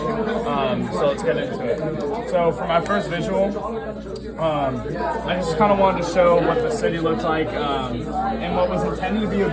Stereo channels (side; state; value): both; identical; correlation 1.00